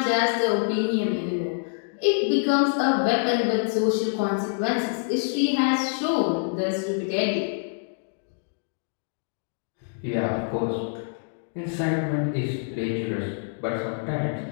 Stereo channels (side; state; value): right; silent; digital silence